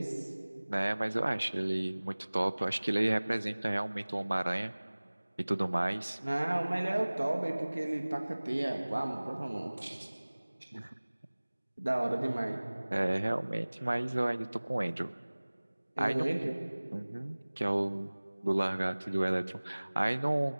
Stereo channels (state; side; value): inverted; both; correlation -1.00